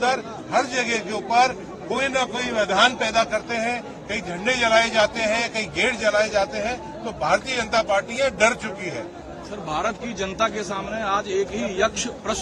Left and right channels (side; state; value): both; identical; correlation 1.00